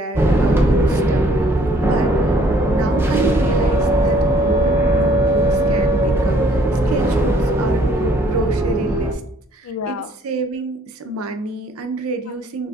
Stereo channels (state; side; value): normal; both; correlation 0.61